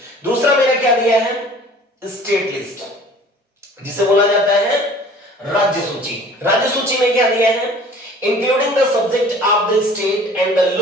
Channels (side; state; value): both; normal; correlation 0.48